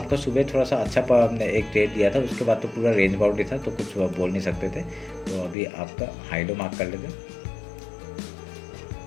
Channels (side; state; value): right; drops out; at 5.6 s